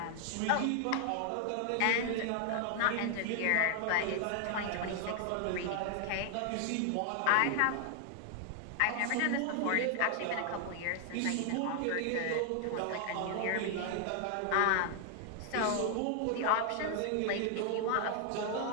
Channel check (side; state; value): both; different; correlation 0.00